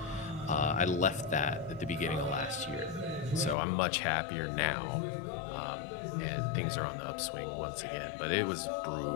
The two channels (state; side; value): drops out; right; at 3.6 s